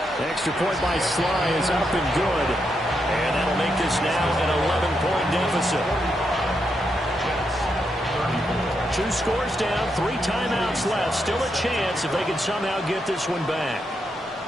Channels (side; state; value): both; normal; correlation 0.82